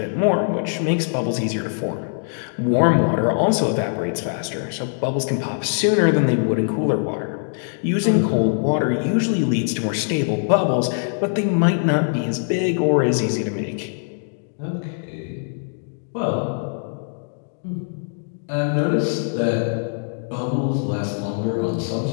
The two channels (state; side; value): silent; right; digital silence